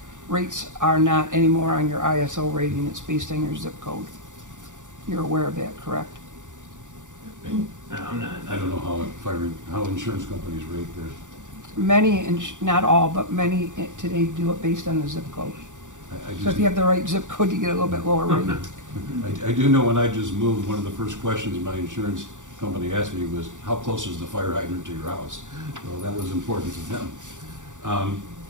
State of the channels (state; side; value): late; left; 0.86 ms